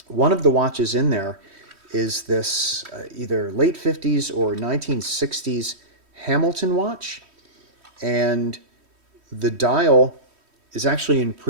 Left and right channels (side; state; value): left; late; 3.1 ms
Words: One of the watches in there is this either late 50s or 1960s Hamilton watch, and the dial is actually in